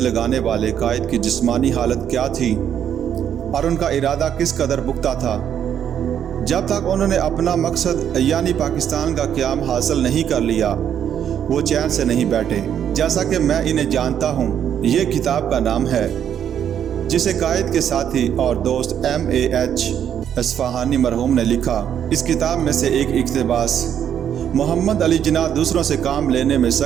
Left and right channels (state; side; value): quieter; left; 9.2 dB